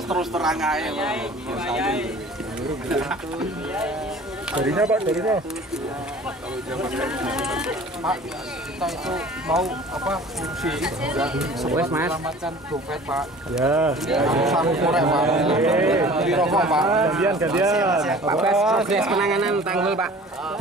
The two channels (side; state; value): both; normal; correlation 0.45